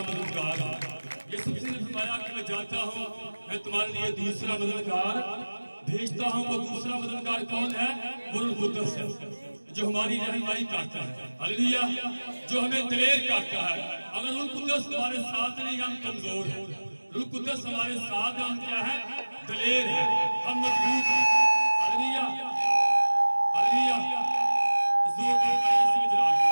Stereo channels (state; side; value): inverted; both; correlation -1.00